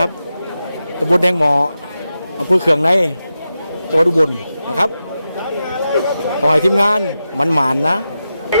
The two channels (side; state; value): both; inverted; correlation -0.89